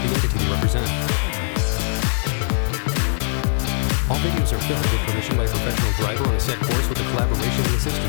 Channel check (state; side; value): silent; right; digital silence